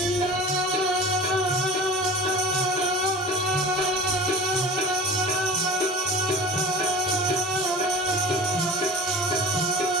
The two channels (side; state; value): both; normal; correlation 0.37